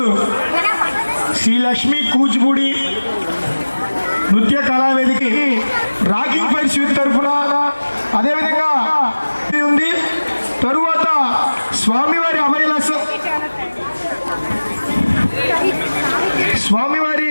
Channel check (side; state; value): both; inverted; correlation -1.00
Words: శ్రీ లక్ష్మీ కూచిపూడి నృత్య కళావేదికి రాకింగ్ ఫైర్ స్వీట్ తరఫున అదేవిధంగా ఉంది. తరువాత స్వామివారి స్వామివారి